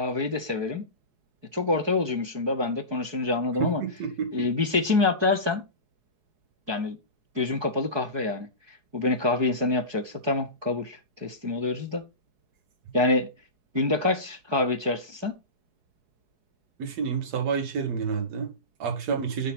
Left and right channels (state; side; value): late; left; 4.7 ms